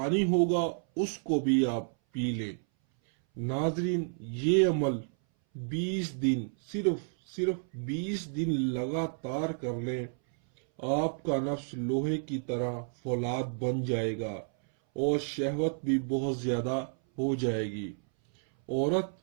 ہوگا اس کو بھی آپ پی لیں۔ ناظرین، یہ عمل 20 دن صرف 20 دن لگاتار کر لیں، آپ کا نفس لوہے کی طرح فولاد بن جائے گا اور شہوت بھی بہت زیادہ ہو جائے گی۔ عورت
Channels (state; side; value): silent; left; 57 dB below the other